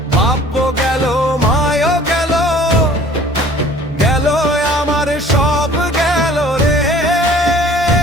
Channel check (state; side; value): normal; both; correlation 0.51